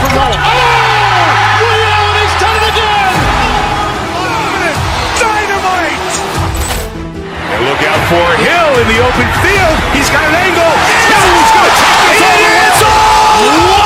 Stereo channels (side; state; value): both; identical; correlation 1.00